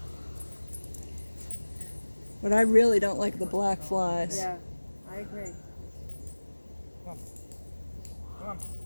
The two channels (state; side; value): inverted; both; correlation -1.00